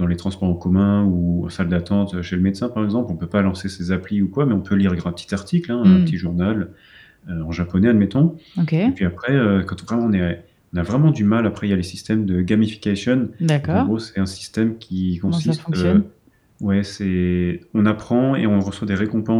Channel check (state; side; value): identical; both; correlation 1.00